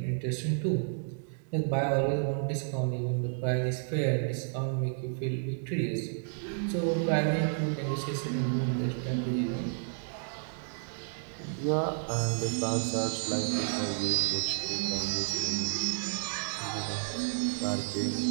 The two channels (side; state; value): left; silent; digital silence